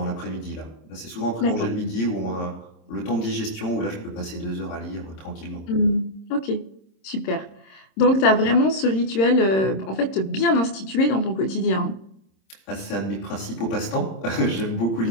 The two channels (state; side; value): late; right; 26 ms